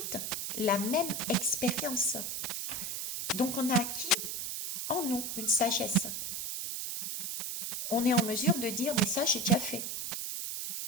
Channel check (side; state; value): right; noise; hiss, 3 dB below the sound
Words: la même expérience. Donc on a acquis en nous une sagesse. On est en mesure de dire, mais ça j'ai déjà fait.